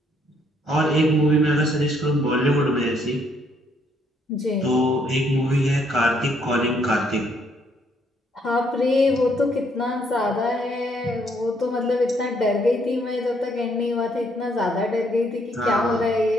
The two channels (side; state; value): both; normal; correlation 0.69